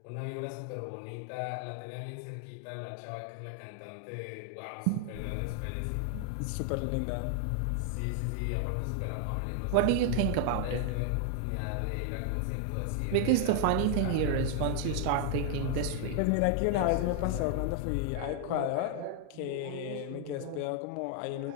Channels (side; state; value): both; different; correlation 0.00